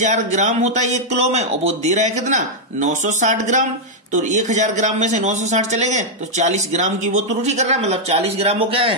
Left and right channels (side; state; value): both; normal; correlation -0.03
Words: ग्राम होता है 1 किलो में, और वो दे रहा है कितना? 960 ग्राम। तो 1000 ग्राम में से 960 चले गए तो 40 ग्राम की वो त्रुटि कर रहा है, मतलब 40 ग्राम वो क्या